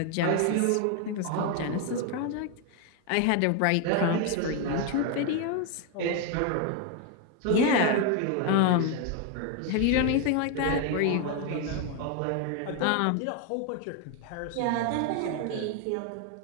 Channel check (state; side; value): different; both; correlation 0.01